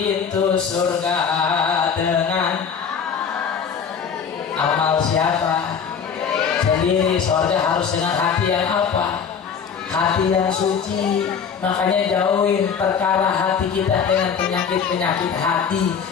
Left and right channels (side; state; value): right; quieter; 6.8 dB